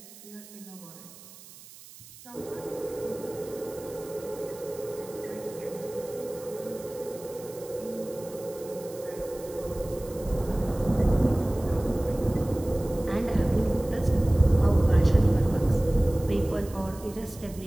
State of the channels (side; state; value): right; noise; hiss, 19 dB below the sound